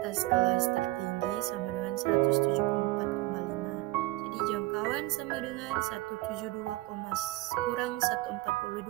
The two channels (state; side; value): quieter; left; 20.0 dB